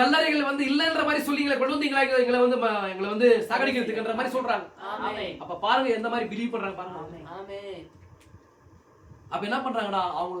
வந்து இல்லன்ற மாதிரி சொல்லிங்களா கொண்டு வந்தீங்களா? எங்களை வந்து சாகடிக்கிறதுக்குன்ற மாதிரி சொல்றாங்க. அப்ப பாருங்க எந்த மாதிரி பிலீவ் பண்றாங்க பாருங்க. அப்ப என்ன பண்றாங்கடா,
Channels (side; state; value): both; identical; correlation 1.00